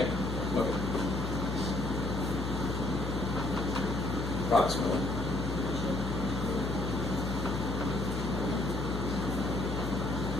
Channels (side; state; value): left; noise; hum, 3 dB below the sound